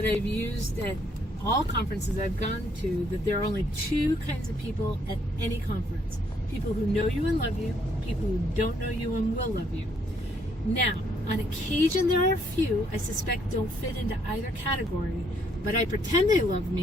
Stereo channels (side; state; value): both; normal; correlation 0.69